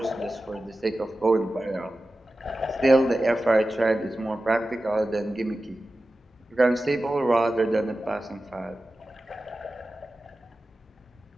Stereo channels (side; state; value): both; normal; correlation 0.94